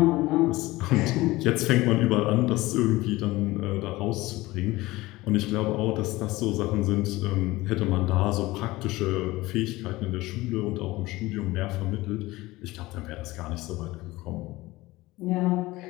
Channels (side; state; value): right; quieter; 19.3 dB